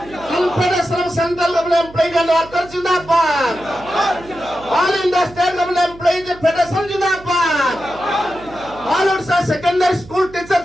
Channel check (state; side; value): noise; right; hum, 20 dB below the sound